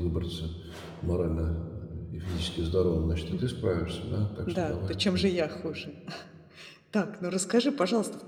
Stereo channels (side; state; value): both; identical; correlation 1.00